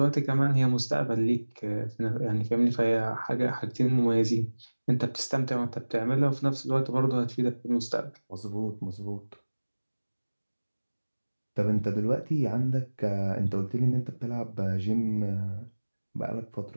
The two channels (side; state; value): both; inverted; correlation -1.00